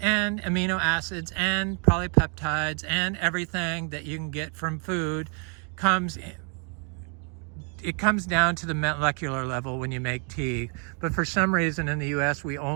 and amino acids, and polypeptides, and everything that you can get from food comes down to the molecular level when you make tea. But for some reason in the US, we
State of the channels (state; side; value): quieter; left; 38.8 dB